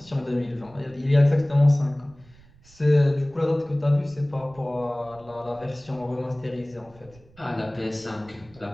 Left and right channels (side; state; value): right; noise; rumble, 25 dB below the sound